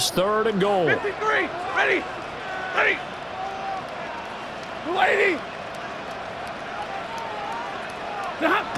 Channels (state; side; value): identical; both; correlation 1.00